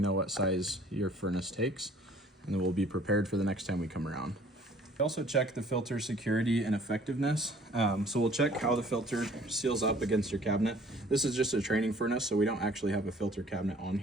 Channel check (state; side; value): normal; both; correlation 0.54